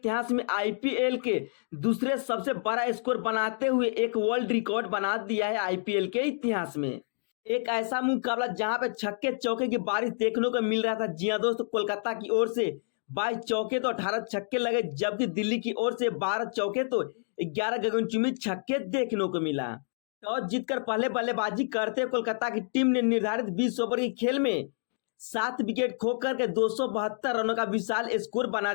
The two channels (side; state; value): right; silent; digital silence